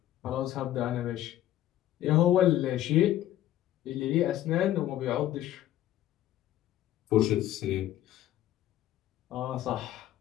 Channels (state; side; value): quieter; right; 13.0 dB